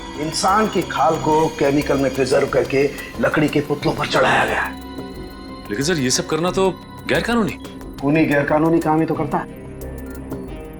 इंसान की खाल को केमिकल में प्रिजर्व करके लकड़ी के पुतलों पर चढ़ाया गया है। लेकिन सर ये सब करना तो गैर कानूनी। खूनी गैर कानूनी काम ही तो करता है।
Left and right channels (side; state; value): both; identical; correlation 1.00